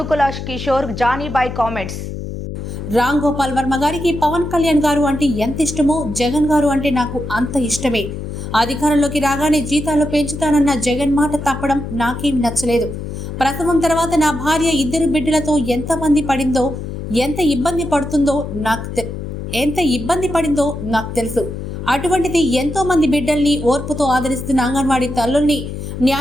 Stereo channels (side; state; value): left; noise; hum, 7 dB below the sound